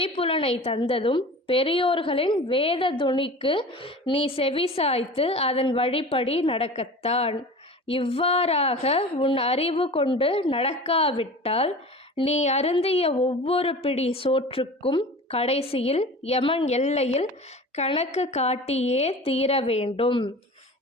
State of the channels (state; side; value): normal; both; correlation 0.37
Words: தந்ததும் பெரியோர்களின் வேத துணிக்கு நீ செவிசாய்த்து அதன் வழிப்படி நடக்கத்தான். இவ்வாறாக உன் அறிவு கொண்டு நடக்காவிட்டால் நீ அருந்திய ஒவ்வொரு பிடி சோற்றுக்கும் கடைசியில் யமன் எல்லையில் கணக்கு காட்டியே தீர வேண்டும்